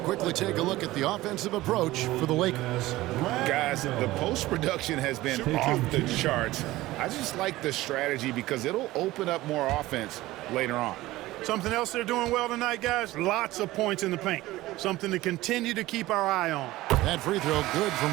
take a look at the offensive approach for the Lakers. Guys, the post-production has been off the charts. I just like the strategy because it'll open up more offense later on. Something else they're doing well tonight, guys, lots of points in the paint. Something to continue to keep our eye on. That free throw good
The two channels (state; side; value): quieter; left; 17.6 dB